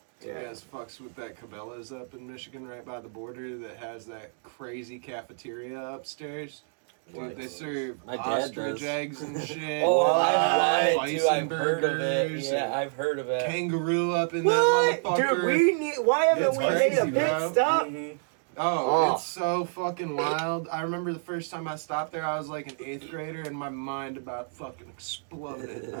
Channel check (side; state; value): left; silent; digital silence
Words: You guys fucks with that Cabela's up in Michigan, right by the border, that has that crazy cafeteria upstairs. Dude, What? they serve My dad ostrich does. eggs and shit. Oh, What? I've lied too. Bison I've heard of it. burgers Yeah, and I've heard of it. kangaroo up in What? that motherfucker. Dude, why haven't It's we made crazy, a pit bro. stop? Mhm. Oh, Oh. it's so fucking wild. I remember the first time I stopped there, I was like an 8th grader, and my mind about fucking exploded.